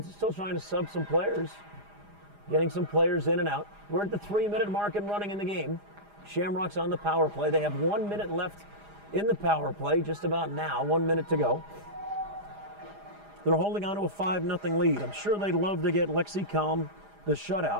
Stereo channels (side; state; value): left; late; 4.9 ms